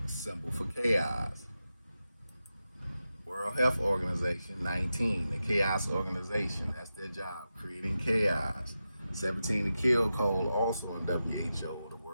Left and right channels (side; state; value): both; inverted; correlation -0.91